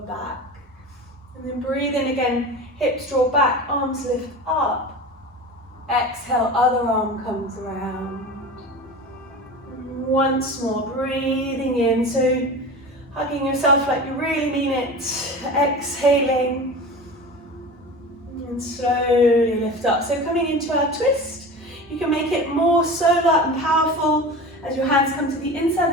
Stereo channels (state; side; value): normal; both; correlation 0.32